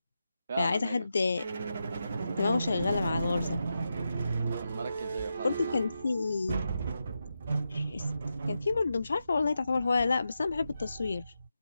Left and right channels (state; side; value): inverted; both; correlation -0.88